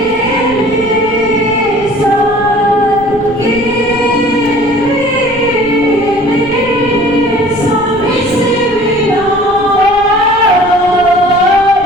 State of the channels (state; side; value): noise; right; rumble, 18 dB below the sound